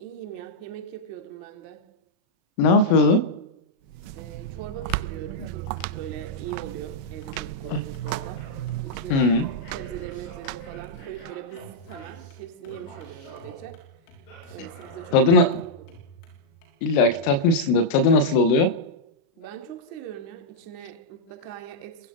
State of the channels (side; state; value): right; late; 36 ms